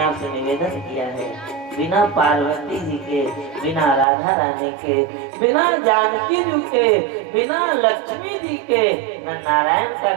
आपसे निवेदन किया है, बिना पार्वती जी के, बिना राधा रानी के, बिना जानकी जी के, बिना लक्ष्मी जी के न नारायण का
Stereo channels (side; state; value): left; drops out; at 4.0 s